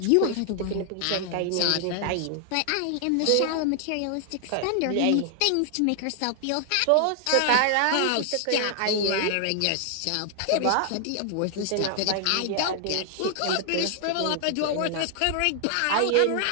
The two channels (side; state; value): both; different; correlation 0.00